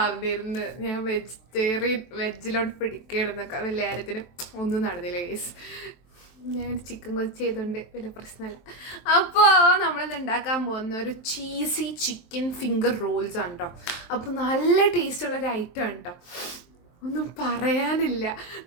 ഞാൻ വെജിലോട്ട് പിടിക്കണമെന്നൊക്കെ. വലിയ കാര്യത്തിന് ഒന്നും നടന്നില്ല ഗൈസ്. ഞാൻ ചിക്കൻ കൊച്ച് ചെയ്തുകൊണ്ട് വലിയ പ്രശ്നമല്ല. അപ്പോൾ നമ്മളിത് ഉണ്ടാക്കാൻ പോകുന്ന ഒരു ചീസി ചിക്കൻ ഫിംഗർ റോൾസ് ആണ് കേട്ടോ. അപ്പോൾ നല്ല ടേസ്റ്റുള്ളൊരു ഐറ്റം ആണ് കേട്ടോ. ഒന്നും പറയാനില്ല.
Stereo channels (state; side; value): late; right; 23 ms